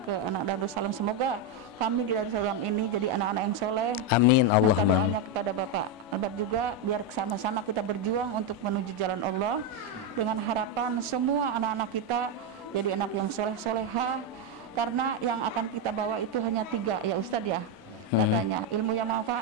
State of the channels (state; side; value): normal; both; correlation 0.05